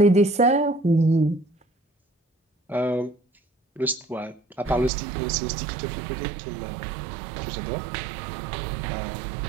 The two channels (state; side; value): drops out; left; at 4.9 s